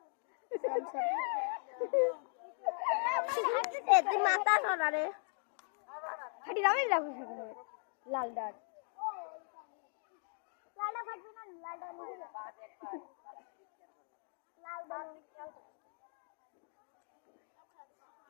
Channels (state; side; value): silent; right; 52 dB below the other